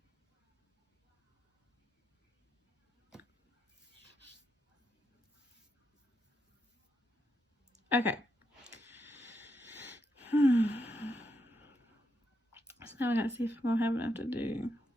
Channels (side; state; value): both; normal; correlation 0.82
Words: Okay. So now I gotta see if I'm gonna have enough to do